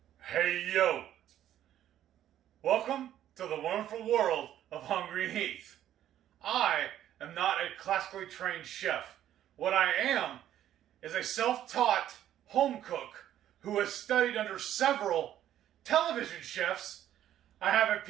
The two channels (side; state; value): left; quieter; 11.6 dB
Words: Hey yo! Welcome to the wonderful world of Hungry Heath. I am not a classically trained chef. What I am is a self-taught home cook who has studied under several television chefs. I have a